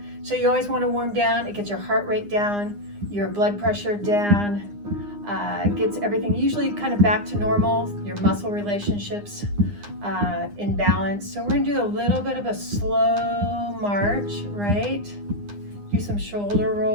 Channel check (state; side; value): late; left; 9.8 ms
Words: So you always wanna warm down. It gets your heart rate down, your blood pressure down, gets everything usually kind of back to normal, your muscle relationships in balance. So we're gonna do a little bit of a slow march, right? Do some shoulder